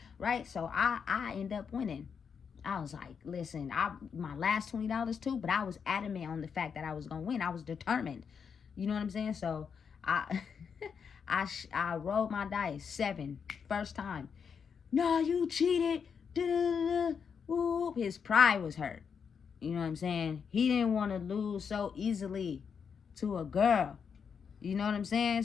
right? So I end up winning. I was like, listen, my last $20 too, but I was adamant on the fact that I was gonna win. I was determined. You know what I'm saying? So I I rolled my dice 7 first time. No, you cheated. Da-da-da-da. Whoop. His pride was hurt. You know what I'm saying? He didn't want to lose so easily to a girl. You know what I'm saying?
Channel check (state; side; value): quieter; right; 6.5 dB